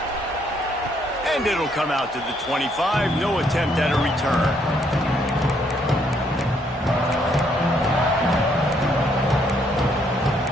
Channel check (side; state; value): both; normal; correlation 0.70